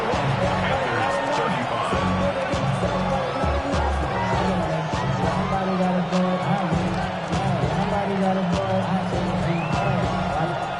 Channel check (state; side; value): identical; both; correlation 1.00